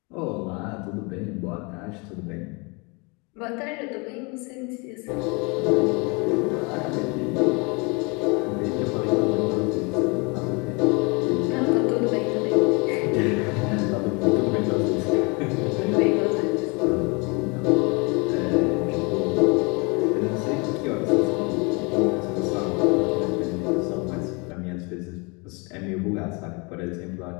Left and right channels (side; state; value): right; quieter; 30.0 dB